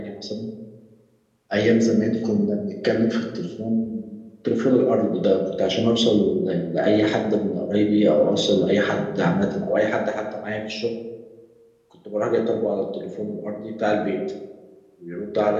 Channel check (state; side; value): identical; both; correlation 1.00